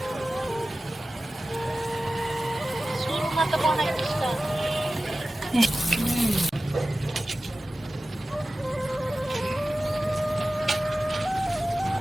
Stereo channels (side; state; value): both; normal; correlation 0.95